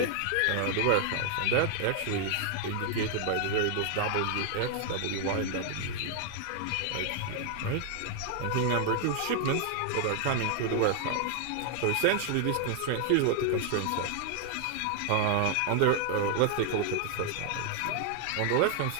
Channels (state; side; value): different; both; correlation 0.00